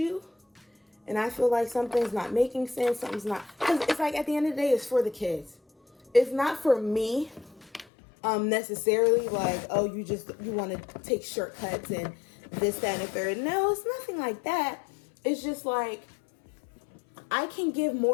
and I feel like something's not making sense, something's not, because it's like at the end of the day, it's for the kids. It's not for me necessarily like, oh, you want to take shortcuts and this, that, and the third. No, it's nothing like that. It's just like I can give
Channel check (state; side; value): drops out; right; at 7.9 s